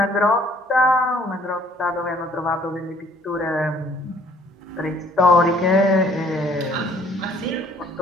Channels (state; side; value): normal; both; correlation 0.59